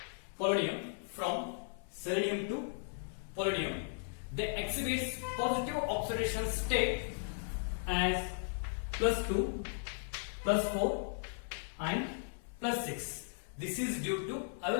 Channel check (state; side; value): silent; right; 53 dB below the other